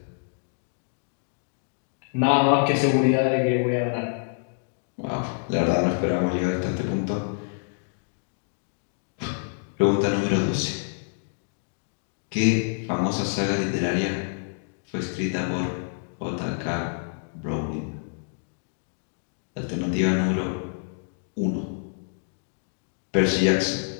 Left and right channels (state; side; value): silent; right; digital silence